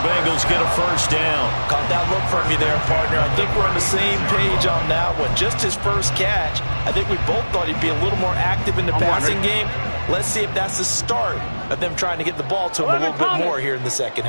Bengals get a first down. Caught that look from you there, partner. I think we're on the same page on that one. Just his first catch. I think we both thought he'd be a little more active in the passing game. Let's see if that's the start of them trying to get the ball to him a little bit more here in the second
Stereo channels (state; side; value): inverted; both; correlation -1.00